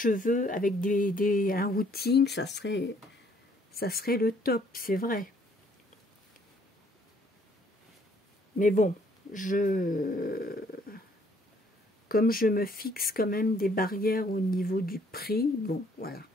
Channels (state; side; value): normal; both; correlation 0.64